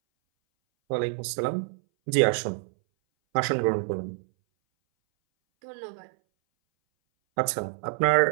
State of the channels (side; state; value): left; silent; 59 dB below the other